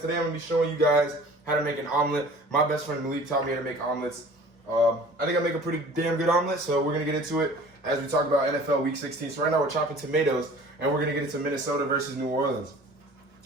Today I'm going to be showing you guys how to make an omelet. My best friend Malik taught me how to make omelets. I think I make a pretty damn good omelet, so we're going to get into it as we talk about NFL Week 16. So right now we're chopping tomatoes, and we're going to get into Minnesota versus New Orleans.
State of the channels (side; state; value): both; normal; correlation 0.46